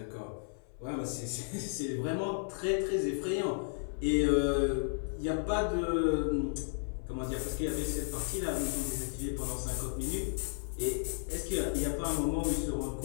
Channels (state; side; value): silent; right; 55 dB below the other